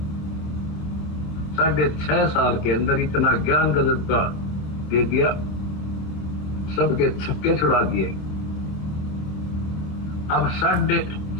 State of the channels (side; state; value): right; late; 26 ms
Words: 6.5 साल के अंदर इतना ज्ञान गजब का दे दिया, सबके छक्के छुड़ा दिए। अब